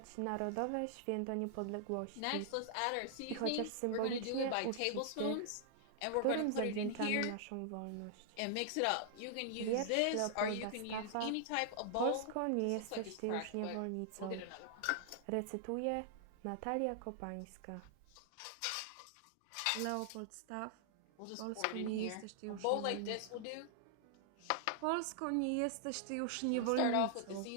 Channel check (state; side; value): different; both; correlation -0.01